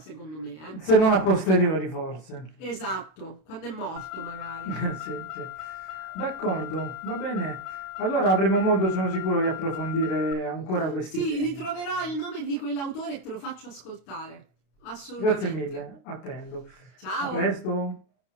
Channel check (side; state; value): right; late; 32 ms